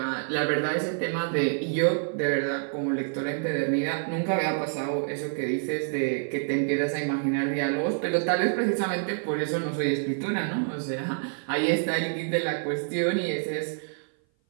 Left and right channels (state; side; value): silent; left; 57 dB below the other